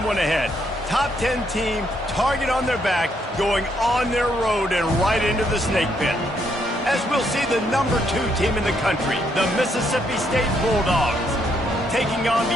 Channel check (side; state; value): both; normal; correlation 0.74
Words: one ahead. Top 10 team, target on their back, going on their road and right into the snake pit. As we'll see the number 2 team in the country, the Mississippi State Bulldogs, taking on